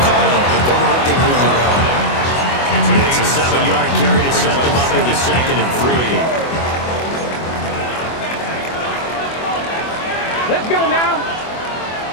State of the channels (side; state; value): right; late; 24 ms